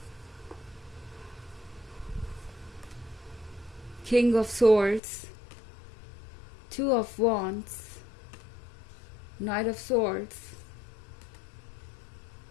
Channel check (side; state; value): right; drops out; at 5.0 s